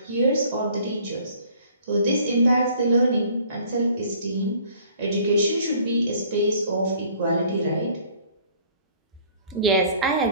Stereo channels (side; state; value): both; inverted; correlation -0.55